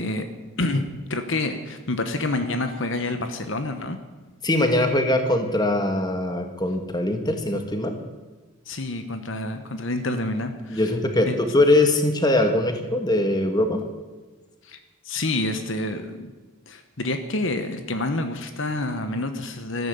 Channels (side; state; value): both; normal; correlation 0.47